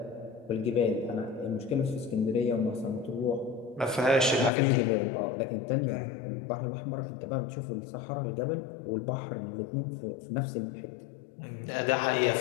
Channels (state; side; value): drops out; right; at 4.5 s